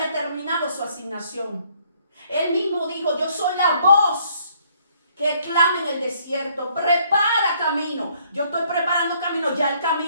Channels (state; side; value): inverted; both; correlation -0.65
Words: terminado su asignación. Él mismo dijo, yo soy la voz que clama en el desierto. Prepara camino. Yo estoy preparando camino. Ya el